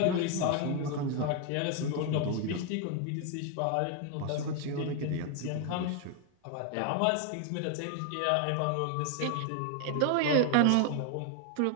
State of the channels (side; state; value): both; different; correlation 0.01